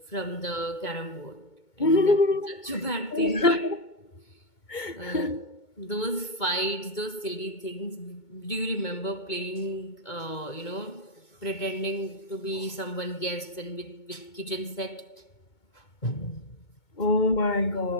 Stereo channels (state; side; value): late; right; 2.2 ms